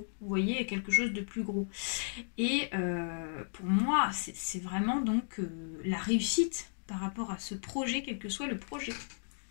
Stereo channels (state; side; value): silent; right; digital silence